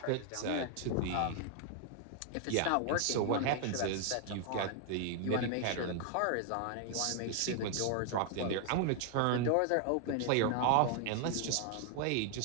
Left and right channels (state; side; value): different; both; correlation 0.00